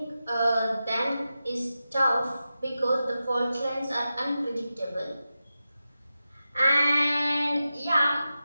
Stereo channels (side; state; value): both; inverted; correlation -0.92